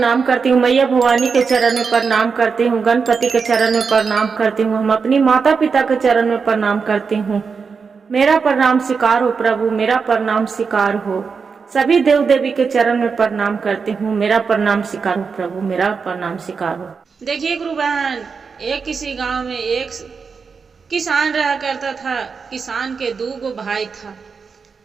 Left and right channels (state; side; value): quieter; left; 5.4 dB